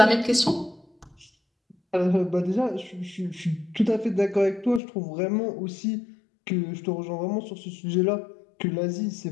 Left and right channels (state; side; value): drops out; right; at 4.8 s